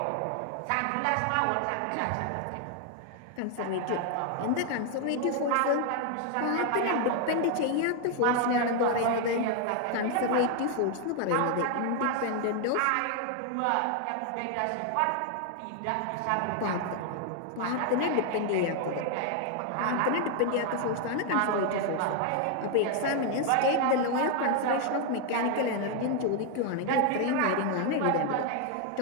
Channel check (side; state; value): both; different; correlation 0.00